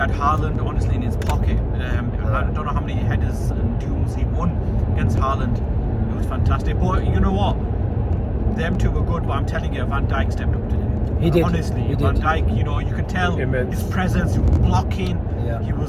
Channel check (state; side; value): identical; both; correlation 1.00